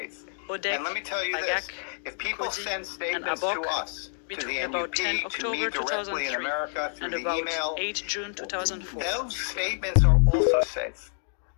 Odek, And let me tell you this, Agak, if people Koji, send and statements to Abok us, to the between about 10 NUP, to October me directly in 2003 America, through and the about email, 8 June 2004. those statements are also safe.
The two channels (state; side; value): silent; right; digital silence